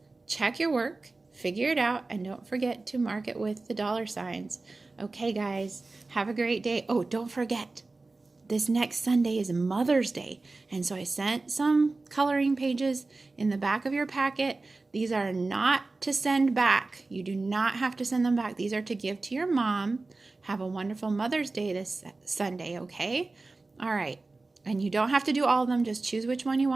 check your work, figure it out, and don't forget to mark it with the dollar signs. Okay, guys, have a great day. Oh, don't forget, this next Sunday is Mother's Day. And so I sent some coloring pages in the back of your packet. These are not to send back. You do not have to send them back. These are to give to your mom. Have a wonderful Mother's Day this Sunday, okay? All right. And you don't have to do all of them. Just choose which one you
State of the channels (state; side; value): quieter; left; 3.4 dB